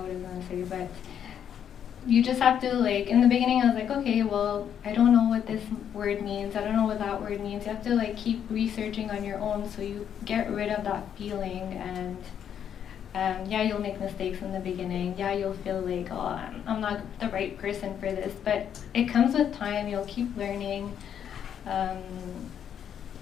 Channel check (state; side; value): quieter; right; 8.9 dB